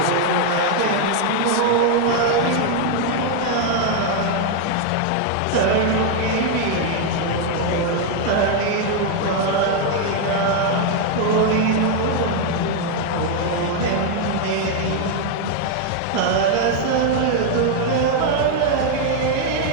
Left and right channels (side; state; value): both; different; correlation 0.01